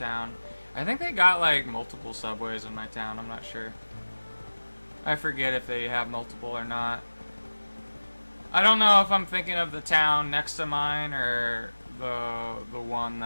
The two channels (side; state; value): both; inverted; correlation -1.00